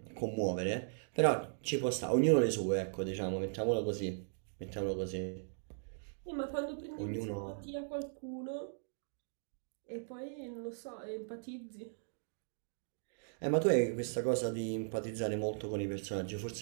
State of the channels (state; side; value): silent; left; digital silence